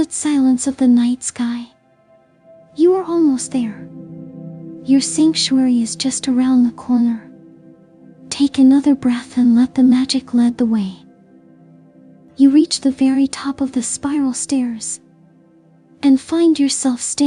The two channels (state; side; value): identical; both; correlation 1.00